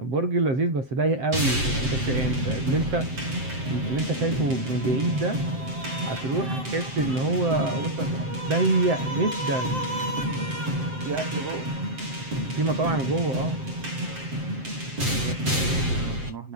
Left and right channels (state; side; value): late; left; 7.7 ms